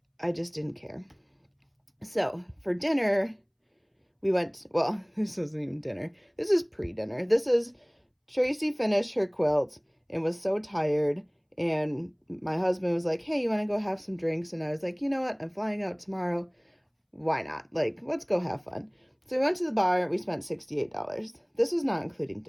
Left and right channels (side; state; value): both; identical; correlation 1.00